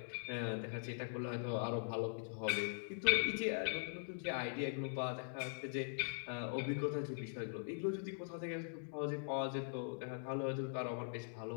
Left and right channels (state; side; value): silent; right; digital silence